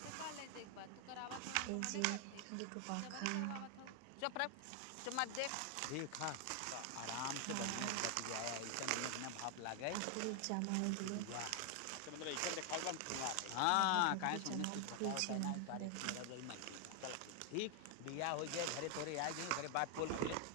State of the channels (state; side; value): different; both; correlation 0.00